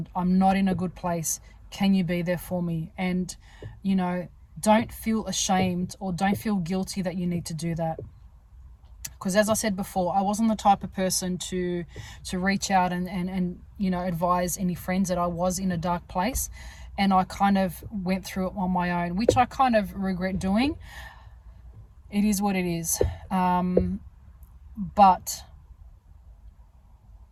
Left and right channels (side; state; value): both; identical; correlation 1.00